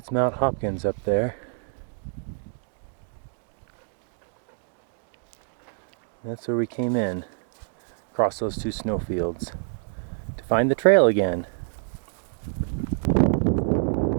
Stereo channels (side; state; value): left; silent; 60 dB below the other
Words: Mount Hopkins up there. That's where we came in, across those two snowfields, to find the trail again.